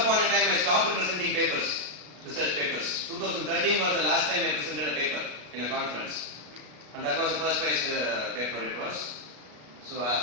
a time I stopped presenting papers. Research papers. 2013 was the last time I presented a paper in a conference, and that was the first prize paper it was. So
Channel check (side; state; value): left; late; 33 ms